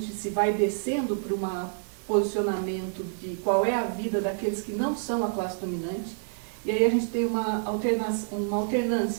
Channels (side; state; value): left; silent; 59 dB below the other